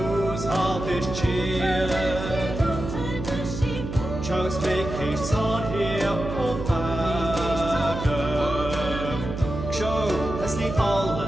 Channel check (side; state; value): right; noise; hum, 7 dB below the sound